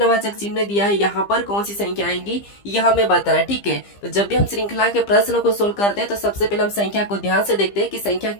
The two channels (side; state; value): right; late; 15 ms